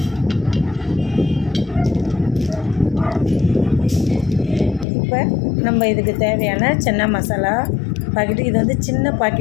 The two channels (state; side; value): drops out; right; at 4.9 s